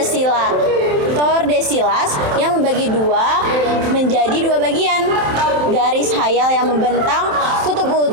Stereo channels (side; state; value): left; late; 27 ms